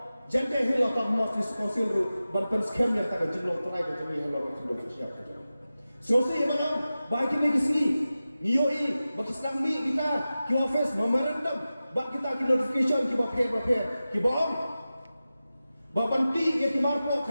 jante hilo ta mos diskonsil ru ban pen scam ya ta jinglong try ka jongi alor kendau bersiap ka jongi so se yamanam ba kini kisi niyo i bakisnang mi kita ki office memorandum ba kita ki notification ki ba prepare ki bom ba banti ya ki marpo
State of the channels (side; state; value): both; inverted; correlation -0.95